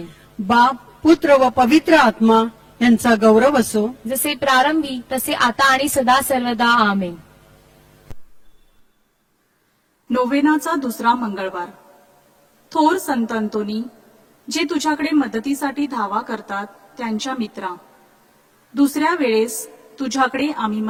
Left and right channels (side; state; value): both; identical; correlation 1.00